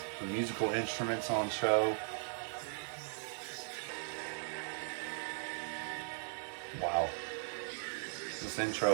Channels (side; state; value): left; silent; digital silence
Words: the musical instruments on show. Wow. This